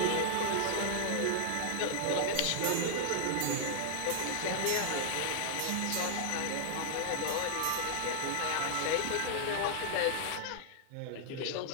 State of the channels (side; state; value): both; different; correlation 0.00